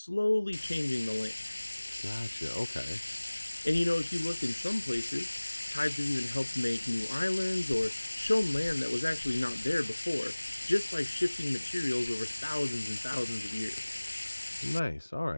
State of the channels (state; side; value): inverted; both; correlation -1.00